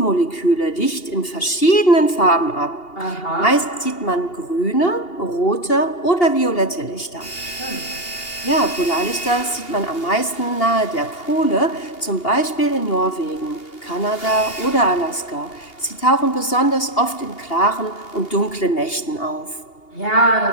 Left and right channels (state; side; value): late; right; 2.8 ms